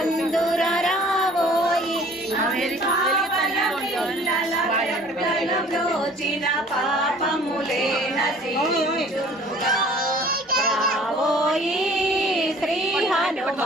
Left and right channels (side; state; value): both; normal; correlation 0.51